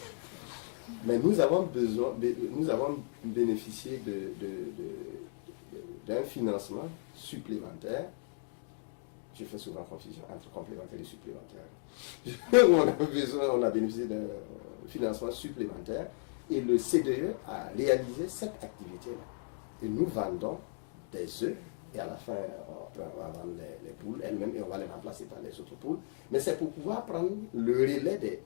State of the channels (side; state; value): right; silent; 55 dB below the other